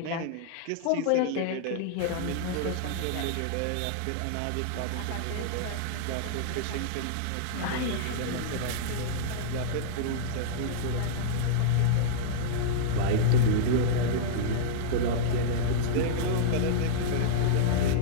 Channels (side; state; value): both; different; correlation -0.02